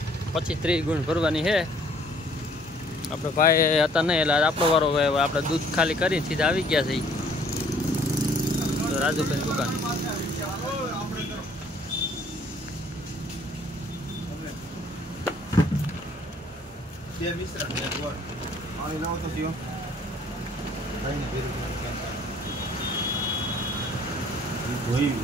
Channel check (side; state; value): both; normal; correlation 0.59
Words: 25-30 ગુણ ભરવાની છે। આપણે ભાઈ હતા નહીં એટલે આપણો વારો આપણે દૂધ ખાલી કરી સીધા આવી ગયા છે રાજુભાઈ દુકાન। બે મિશ્રણ ને ગોળ આની લાવો તો જીઓ ભાઈ ને ભેરું ધોઈ